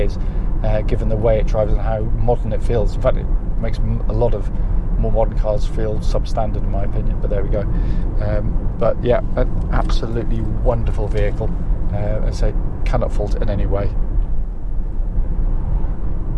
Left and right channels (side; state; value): both; identical; correlation 1.00